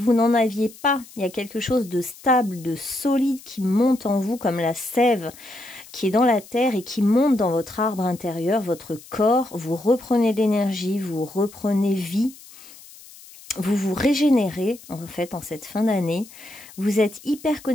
aviez pas. Il y a quelque chose de stable, de solide qui monte en vous comme la sève qui est dans la terre et qui monte dans votre arbre intérieur, votre corps. Vous reprenez de l'énergie, vous reprenez vie. Vous vous régénérez, en fait, en cette fin d'année. Vous êtes hyper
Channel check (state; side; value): noise; left; hiss, 20 dB below the sound